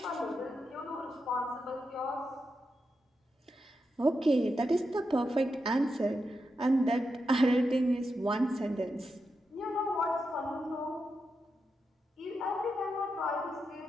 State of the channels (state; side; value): normal; both; correlation 0.87